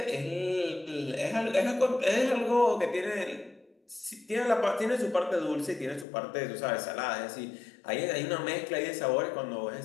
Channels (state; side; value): drops out; right; at 6.1 s